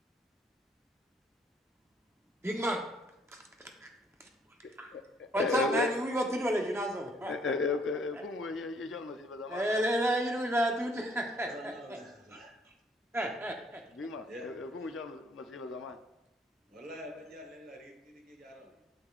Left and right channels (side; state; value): both; normal; correlation 0.64